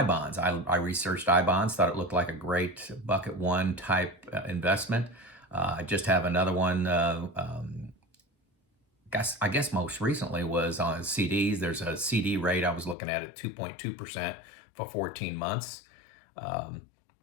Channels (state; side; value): drops out; right; at 13.0 s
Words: bonds. I researched I bonds, thought it looked like a great bucket one type investment. I just have another one. I guess most recently was on CDs. There's a CD rate I was looking at 2.2% for 14 months. And